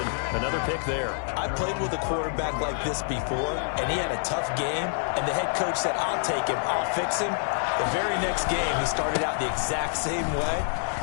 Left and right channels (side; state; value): right; silent; 57 dB below the other